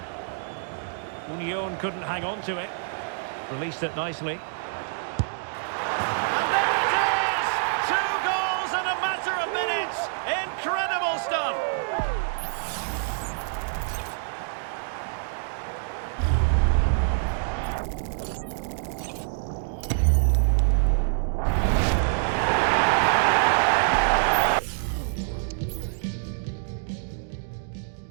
Union couldn't hang on to it. Released it nicely. And there it is! 2 goals in a matter of minutes. Incredible stuff.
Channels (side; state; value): left; silent; digital silence